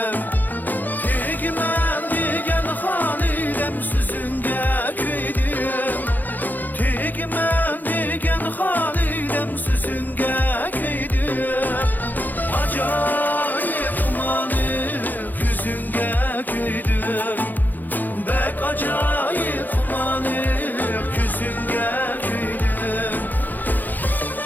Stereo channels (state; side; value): late; right; 0.085 ms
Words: Tegmen diyen Halidem Süzünge köydüm Tegmen diyen Halidem Süzünge köydüm Acayip umanık yüzünge köydüm Bek acayip umanık yüzünge köydüm